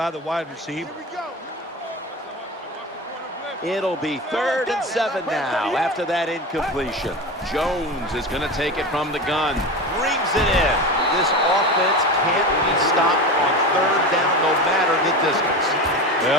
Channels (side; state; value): both; normal; correlation 0.26